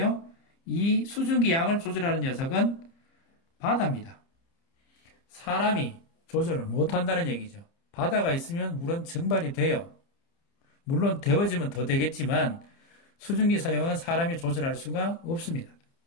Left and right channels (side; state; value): right; late; 30 ms